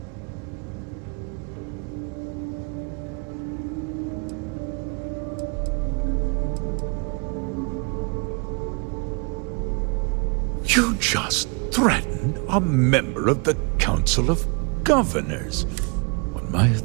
You just threatened a member of the Council of Governors. On my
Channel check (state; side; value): quieter; left; 34.5 dB